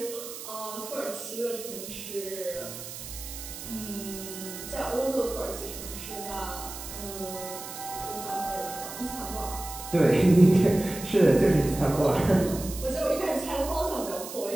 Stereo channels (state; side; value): noise; right; hiss, 11 dB below the sound